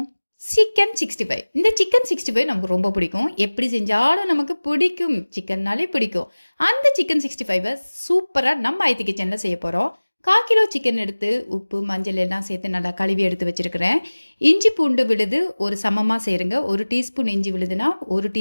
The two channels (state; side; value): inverted; both; correlation -1.00